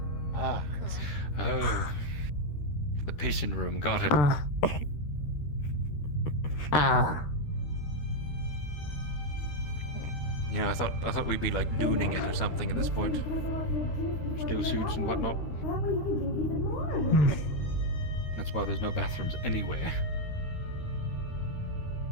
Oh, the patient room. Got it. You know, I thought we'd be like dooning it or something at this point. Steel suits and whatnot. That's why there's no bathrooms anywhere.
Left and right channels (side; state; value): right; late; 13 ms